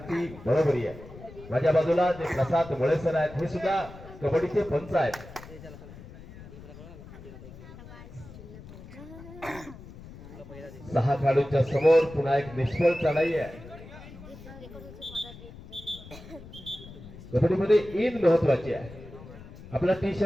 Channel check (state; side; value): noise; left; rumble, 16 dB below the sound